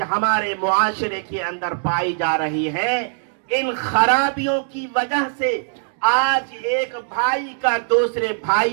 ہمارے معاشرے کے اندر پائی جا رہی ہیں, ان خرابیوں کی وجہ سے آج ایک بھائی کا دوسرے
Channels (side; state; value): left; silent; digital silence